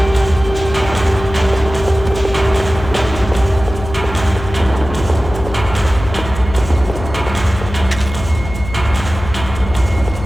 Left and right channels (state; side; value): noise; left; hum, 10 dB below the sound